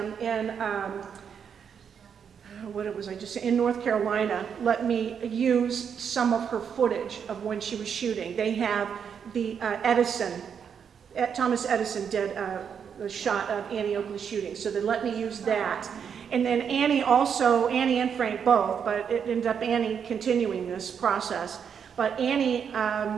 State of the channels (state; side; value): quieter; left; 7.4 dB